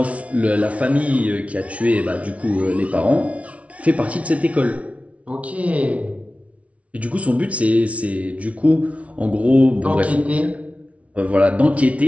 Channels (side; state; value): left; late; 0.065 ms